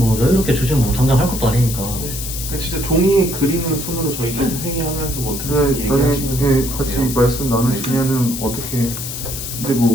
여유롭게 주시면 뭐 당장 할 것도 아니니까. 그러니까 진짜 종이에 그리는 손으로 저희끼리 회의하면서 뭐 어떻게 네, 나중에 얘기하시는 같이 거예요. 말씀 나누시면은 어떻게. 근데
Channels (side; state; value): left; noise; hiss, 7 dB below the sound